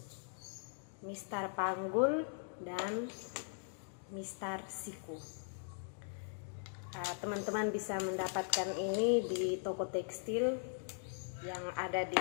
mistar panggul, dan mistar siku. Teman-teman bisa mendapatkan ini di toko tekstil yang ada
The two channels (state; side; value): silent; right; digital silence